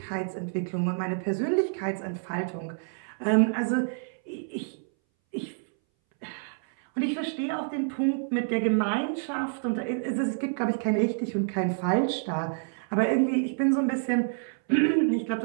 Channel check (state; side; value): silent; left; 59 dB below the other